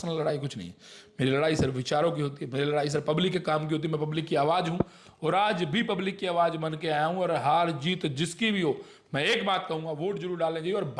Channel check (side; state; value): both; identical; correlation 1.00